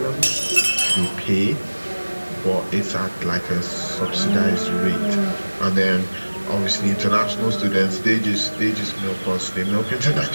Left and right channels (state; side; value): inverted; both; correlation -1.00